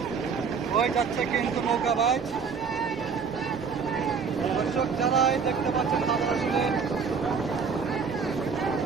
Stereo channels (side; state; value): left; quieter; 5.7 dB